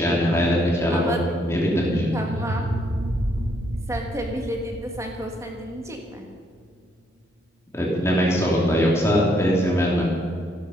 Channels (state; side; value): normal; both; correlation 0.72